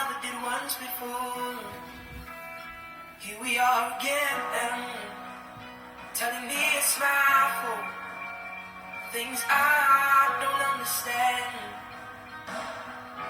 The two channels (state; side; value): identical; both; correlation 1.00